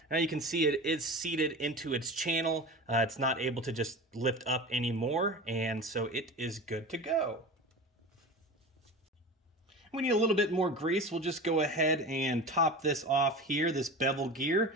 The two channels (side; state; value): both; normal; correlation 0.31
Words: Now you can see it is seated into its channel. It's not able to just lift up anymore, and so it is good to go. We need a little bit more grease. We'll just go ahead and top this off here, this bevel gear.